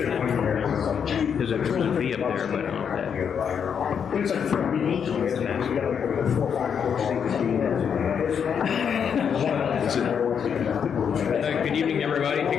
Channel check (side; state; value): right; quieter; 7.4 dB